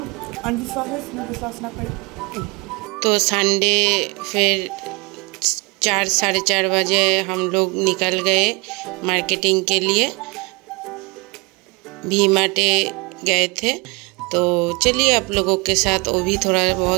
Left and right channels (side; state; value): left; quieter; 27.8 dB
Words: अंधविश्वास है, इसमें विश्वास ना करें। तो संडे फिर 4 साढ़े 4 बजे हम लोग निकल गए मार्केटिंग के लिए। वी-मार्ट गए थे। तो चलिए आप लोगों के साथ वो भी थोड़ा